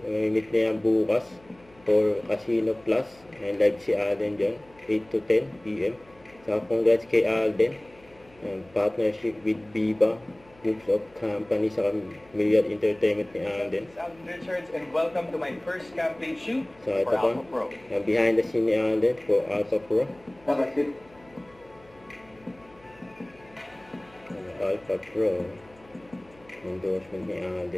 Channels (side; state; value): left; noise; hum, 28 dB below the sound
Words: May meet na yan bukas for Casino Plus, and live si Alden dyan 8 to 10 PM. Saka congrats kay Alden, partnership with Viva Groups of Company sa Myriad Entertainment ni Alden. I'm Richards and welcome to my first campaign shoot So ito for pa, Alpha Pro. behind the scene ni Alden for Alpha Pro. Alpha Pro, endorsement ni